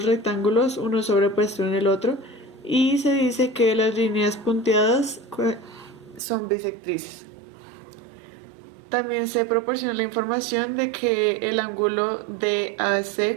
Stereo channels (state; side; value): drops out; left; at 6.2 s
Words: rectángulos, uno sobrepuesto en el otro, y se dice que las líneas punteadas son bisectrices. También se proporciona la información de que el ángulo DAC